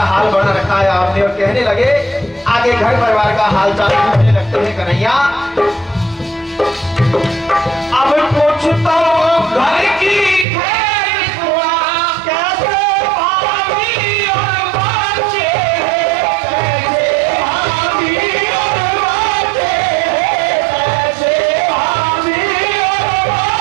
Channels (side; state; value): left; drops out; at 10.5 s